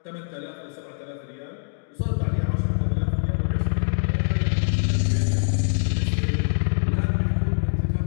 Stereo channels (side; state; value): right; silent; 63 dB below the other